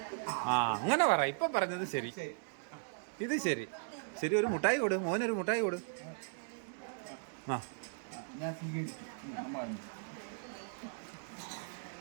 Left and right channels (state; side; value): silent; left; digital silence